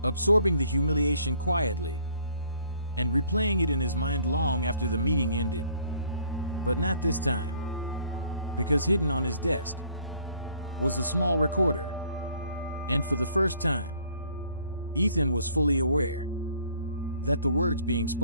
absorbing the humiliation quietly, and replaying it in his mind long after the meeting ended. But not this time, because hidden on his desk was a small recorder. And for the first time, Ethan was fully aware that the words being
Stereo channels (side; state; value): both; inverted; correlation -0.59